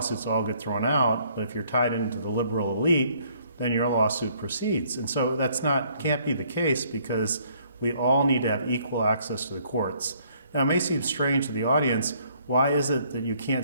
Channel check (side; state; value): both; inverted; correlation -0.64